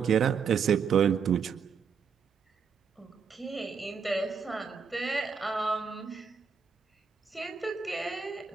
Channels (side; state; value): left; quieter; 6.2 dB